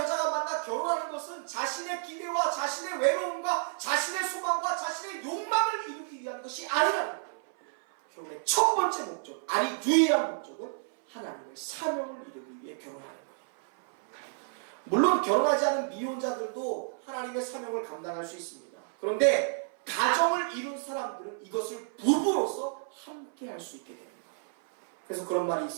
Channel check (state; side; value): silent; left; 56 dB below the other